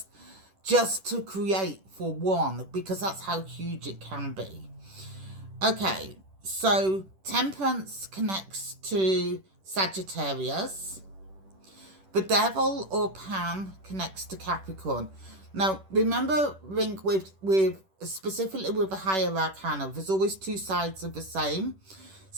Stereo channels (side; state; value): left; late; 10 ms